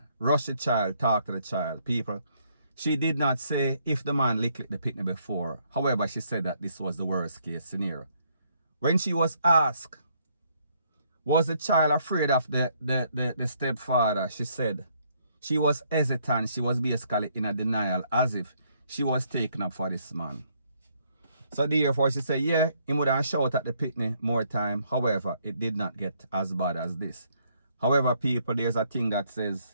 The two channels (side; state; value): both; inverted; correlation -0.69